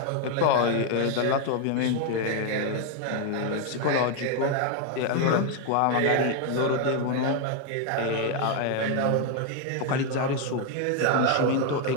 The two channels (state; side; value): different; both; correlation 0.01